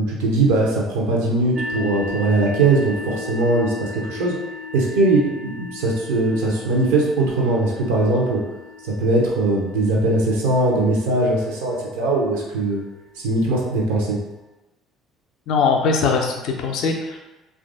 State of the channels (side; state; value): both; normal; correlation 0.34